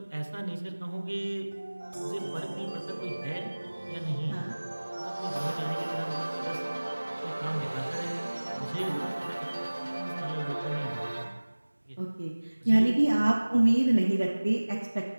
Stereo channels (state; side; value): inverted; both; correlation -1.00